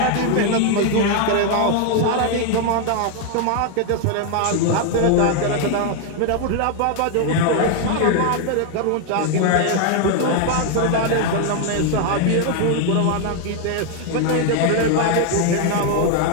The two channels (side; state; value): both; different; correlation 0.00